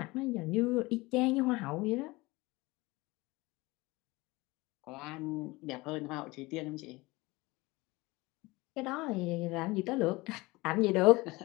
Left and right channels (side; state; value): right; quieter; 22.2 dB